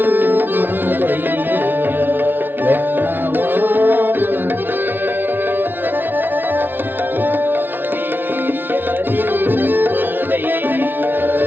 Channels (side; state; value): left; late; 0.097 ms